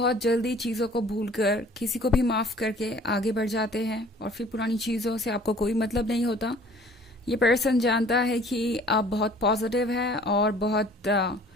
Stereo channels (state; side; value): normal; both; correlation 0.52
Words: जल्दी चीज़ों को भूलकर किसी को भी माफ़ करके आगे बढ़ जाते हैं और फिर पुरानी चीज़ों से आपको कोई मतलब नहीं होता। ये पर्सन जानता है कि आप बहुत पॉजिटिव हैं और बहुत